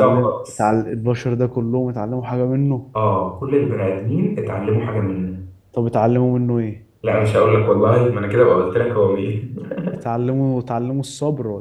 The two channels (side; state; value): both; identical; correlation 1.00